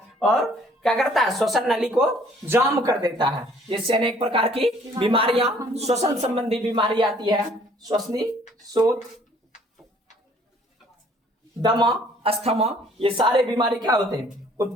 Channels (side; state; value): both; normal; correlation 0.58